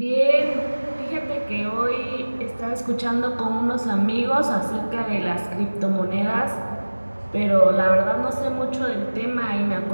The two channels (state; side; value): inverted; both; correlation -1.00